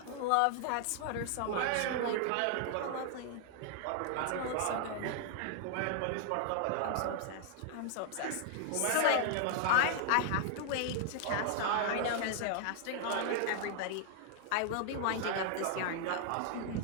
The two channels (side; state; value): both; different; correlation 0.00